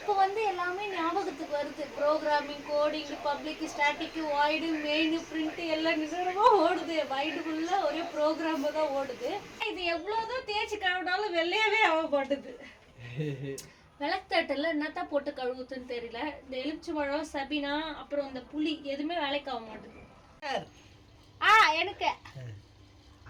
வந்து எல்லாமே ஞாபகத்துக்கு வருது. Programming, coding, public, static, void, main, print எல்லாம் நிஜமாக ஓடுது. மைண்டுக்குள்ளே ஒரே ப்ரோக்ராம் தான் ஓடுது. இது எவ்வளோதான் தேய்ச்சி கழுவினாலும் வெள்ளையாவே ஆக மாட்டுது. விளக்குத்தட்டில் என்னத்தான் போட்டு கழுவுதுன்னு தெரியல. இந்த எலுமிச்சை பழம், சபினா, அப்புறம் இந்த புளி எதுவுமே வேலைக்கு ஆக மாட்டுது. எனக்கு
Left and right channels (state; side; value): identical; both; correlation 1.00